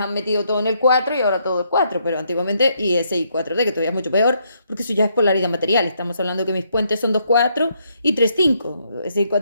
metido todo en el 4 y ahora todo es 4, pero antiguamente y ese y 4D, que todavía es mucho peor, porque eso ya es polaridad material. Estamos hablando que mis puentes son 2-4 y 3-5. Ese y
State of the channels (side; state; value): both; inverted; correlation -0.74